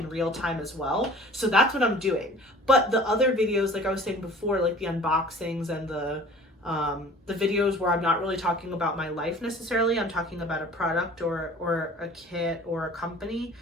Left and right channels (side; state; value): both; normal; correlation 0.46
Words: real time as well. So that's what I'm doing. But the other videos, like I was saying before, like the unboxings and the videos where I'm not really talking about my life necessarily, I'm talking about a product or a kit or a company,